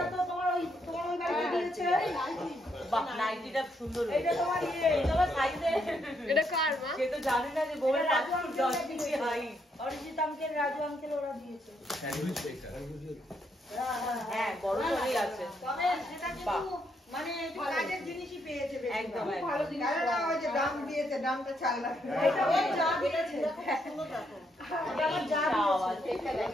তো তোমার ওই বাড়িতে দিয়েছে বাহ নাইটিটা সুন্দর এইটা তোমার তোমার সাইজে এটা কার মা? সে তো জানে না যে বউয়ের 10 inch height Arijit uncle Raju uncle ওরা দিয়েছে হ্যাঁ বড় করেই আছে তবে সেটা কিন্তু মানে একটু কাজের জিনিসই পেয়েছে বেশি একদম ভালো জিনিস না ওই যে দাম দিয়েছে দামটা 4 লাখ এটা ওই যা দিয়েছে সুন্দর দেখো এটা আমার যা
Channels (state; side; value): normal; both; correlation 0.76